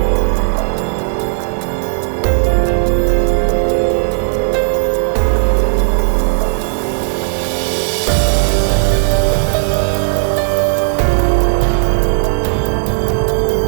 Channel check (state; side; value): silent; left; digital silence